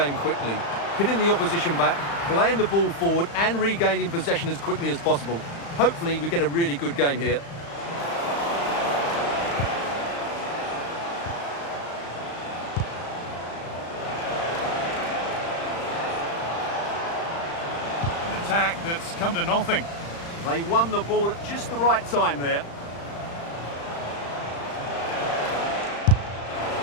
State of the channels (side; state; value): right; late; 35 ms